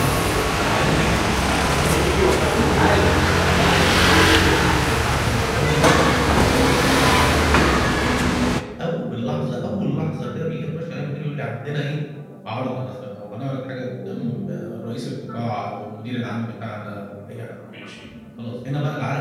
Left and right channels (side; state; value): both; identical; correlation 1.00